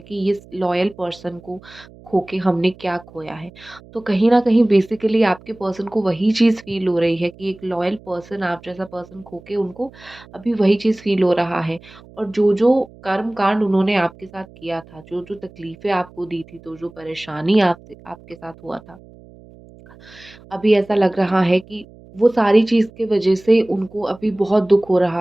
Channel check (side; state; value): right; noise; hum, 23 dB below the sound